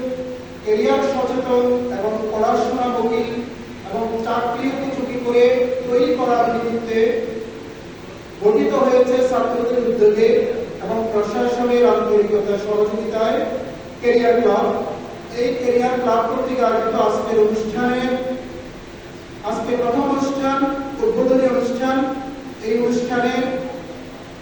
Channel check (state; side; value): identical; both; correlation 1.00